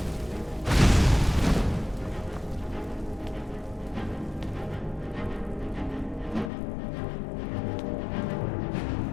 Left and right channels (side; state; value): right; drops out; at 6.5 s